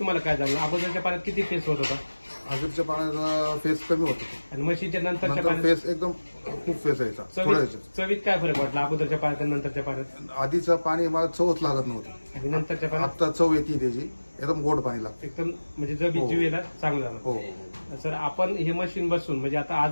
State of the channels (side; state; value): both; inverted; correlation -1.00